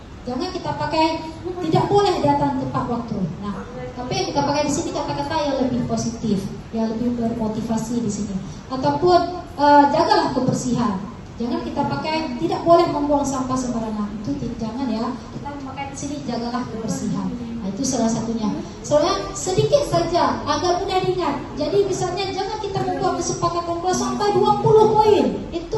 Jangan kita pakai tidak boleh datang tepat waktu. Nah, tapi kita pakai di sini kata-kata yang lebih positif, yang lebih bermotivasi di sini. Ataupun jagalah kebersihan. Jangan kita pakai tidak boleh membuang sampah sembarangan. Itu jangan ya. Kita pakai di sini jagalah kebersihan. Nah, itu salah satunya. Soalnya sedikit saja agar mudah diingat. Jadi misalnya jangan kita membuat kesepakatan kelas sampai 20 poin.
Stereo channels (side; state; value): both; identical; correlation 1.00